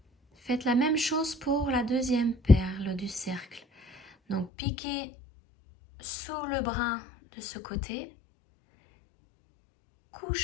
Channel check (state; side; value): drops out; right; at 4.5 s